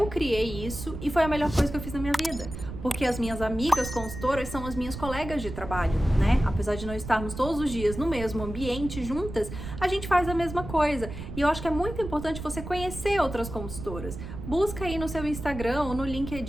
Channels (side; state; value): right; noise; rumble, 9 dB below the sound